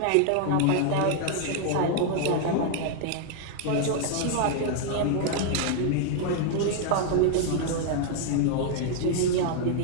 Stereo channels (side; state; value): both; different; correlation 0.00